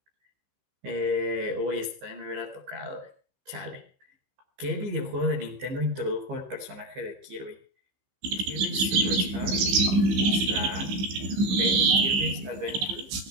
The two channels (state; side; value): late; left; 15 ms